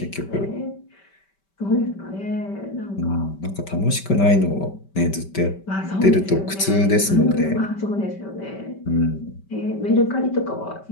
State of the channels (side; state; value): right; late; 5.2 ms